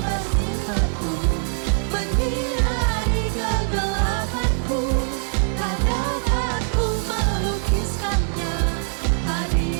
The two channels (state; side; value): silent; left; 62 dB below the other